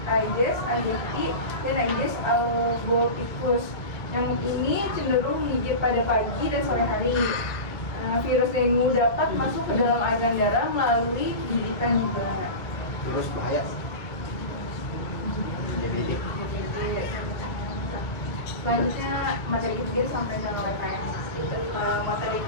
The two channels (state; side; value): late; right; 1.7 ms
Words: Aedes aegypti dan Aedes albopictus. Nyamuk ini cenderung menggigit pada pagi dan sore hari. Virus dengue dapat masuk ke dalam aliran darah melalui gigitan juga. Terus bahaya. Selanjutnya materi ketiga disampaikan oleh KM. Materi